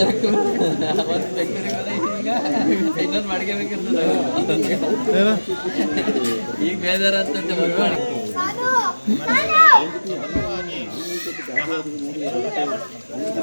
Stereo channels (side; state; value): both; inverted; correlation -1.00